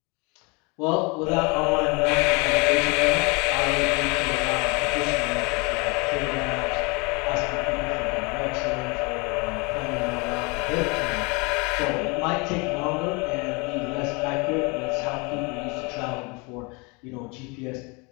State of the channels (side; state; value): right; quieter; 29.4 dB